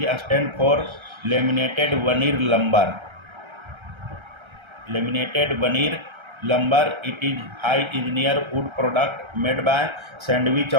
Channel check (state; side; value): late; left; 1.3 ms